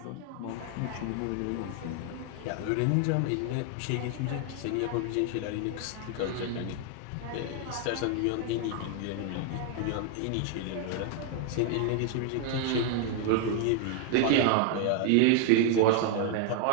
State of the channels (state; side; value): different; both; correlation 0.00